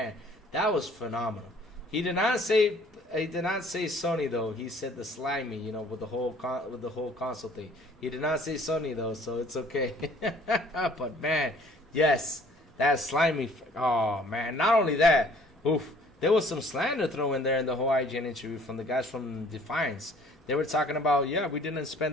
that was phenomenal. He did not say Sony though. He said the slimy, you know, with the whole console thing. He did not say Sony though, so it's okay. But man, yes, that slimy. Oh man, not only that, oof. There was some slander thrown in there in the whole IGN interview from the guys from Defiance. They were talking about, yeah, we didn't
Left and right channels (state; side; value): normal; both; correlation 0.55